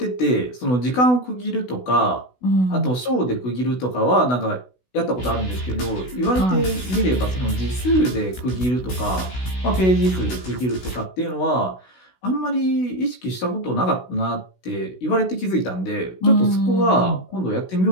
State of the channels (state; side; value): late; right; 16 ms